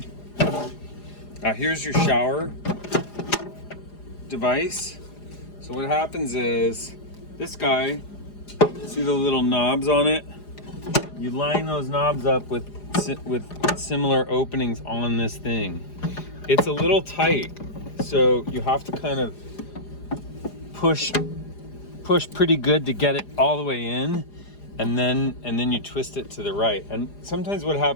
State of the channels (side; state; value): right; late; 4.9 ms